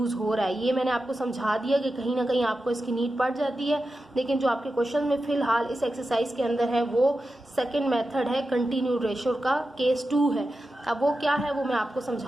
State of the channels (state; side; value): normal; both; correlation 0.91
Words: हो रहा है। ये मैंने आपको समझा दिया कि कहीं ना कहीं आपको इसकी नीड पड़ जाती है, लेकिन जो आपके क्वेश्चन में फिलहाल इस एक्सरसाइज के अंदर है वो सेकंड मेथड है, कंटिन्यूड रेशियो का केस 2 है। अब वो क्या है वो मैं आपको